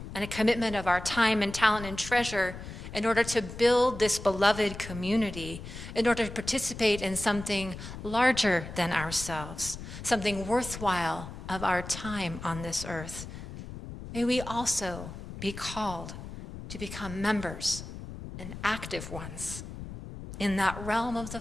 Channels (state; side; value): noise; left; rumble, 11 dB below the sound